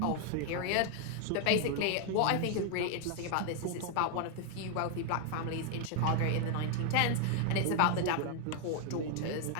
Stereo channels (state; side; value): different; both; correlation 0.00